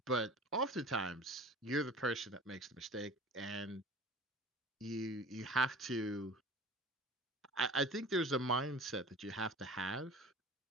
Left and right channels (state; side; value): normal; both; correlation 0.41